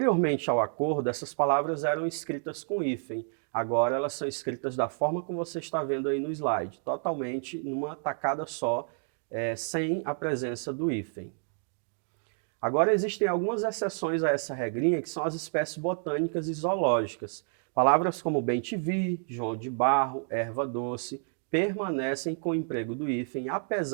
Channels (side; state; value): left; silent; 58 dB below the other